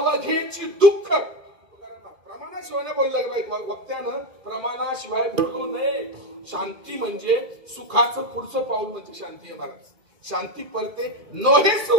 दुःख. प्रमाणाशिवाय बोललं वक्त्यानं, प्रमाणाशिवाय बोलू नये. शांती म्हणजे सुखाचं पुढचं पाऊल म्हणजे शांती आहे महाराज. शांती परते नोहे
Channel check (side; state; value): left; late; 2.3 ms